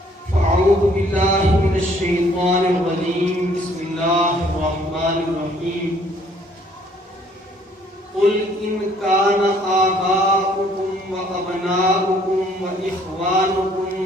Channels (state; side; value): normal; both; correlation 0.61